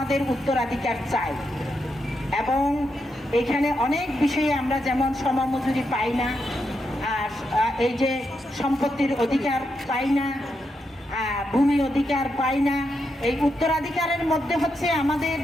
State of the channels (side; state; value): both; normal; correlation 0.83